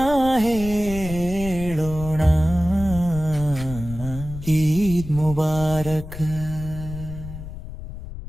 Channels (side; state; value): left; noise; rumble, 11 dB below the sound